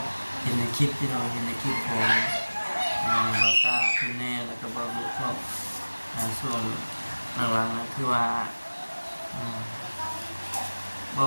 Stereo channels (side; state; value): both; inverted; correlation -1.00